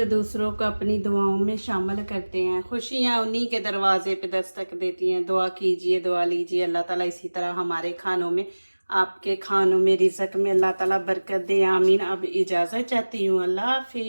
दूसरों को अपनी दुआओं में शामिल करते हैं, खुशियाँ उन्हीं के दरवाजे पे दस्तक देती हैं। दुआ कीजिए, दुआ लीजिए, अल्लाह ताला इसी तरह हमारे खानों में, आपके खानों में, रिज़्क़ में अल्लाह ताला बरकत दे, आमीन। अब इजाज़त चाहती हूँ, अल्लाह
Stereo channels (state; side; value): inverted; both; correlation -1.00